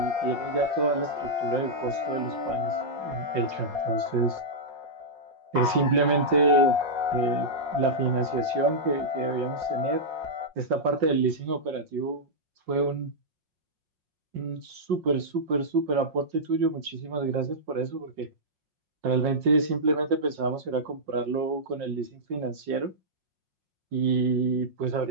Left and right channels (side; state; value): left; late; 5.6 ms